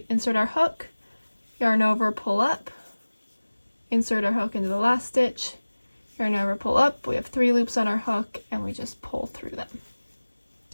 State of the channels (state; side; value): inverted; both; correlation -1.00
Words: insert our hook, yarn over, pull up, insert our hook into the last stitch, yarn over, pull up. We have 3 loops on our hook, and we just pull through them.